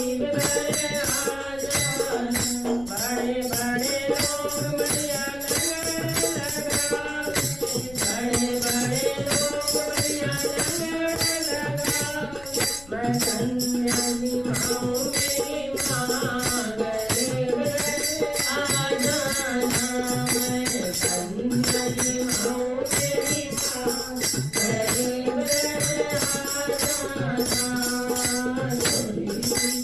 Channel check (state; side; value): noise; left; rumble, 19 dB below the sound